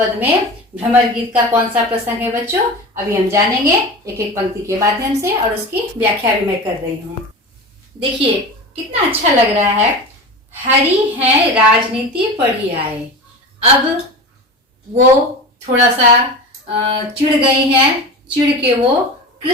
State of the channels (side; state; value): both; normal; correlation 0.30